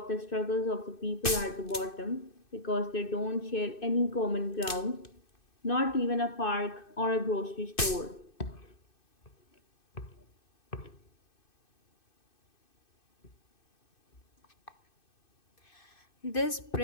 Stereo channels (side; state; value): right; late; 2.6 ms